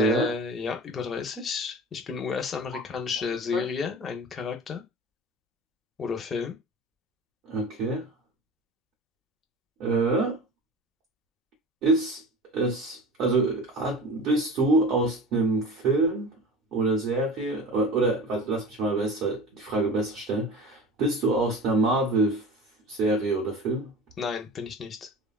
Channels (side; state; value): both; normal; correlation 0.35